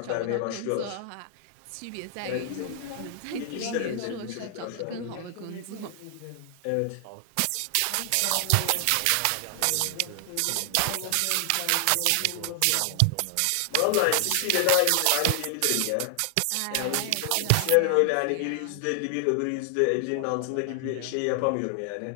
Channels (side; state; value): both; different; correlation 0.00